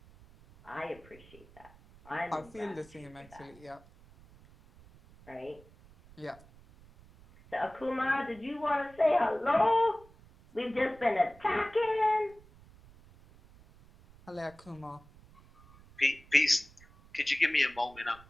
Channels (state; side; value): noise; right; rumble, 24 dB below the sound